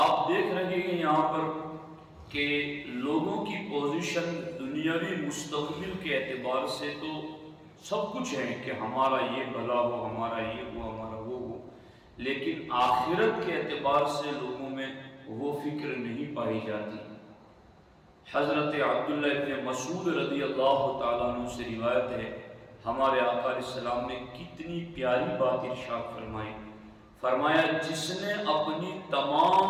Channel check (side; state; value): both; identical; correlation 1.00